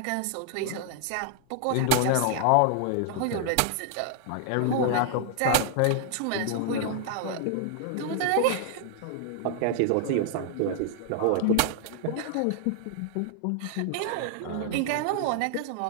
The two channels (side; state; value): both; different; correlation 0.00